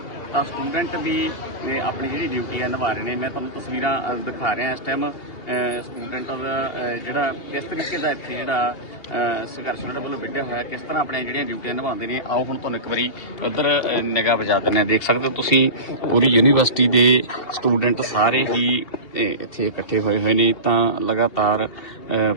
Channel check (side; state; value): right; late; 2.8 ms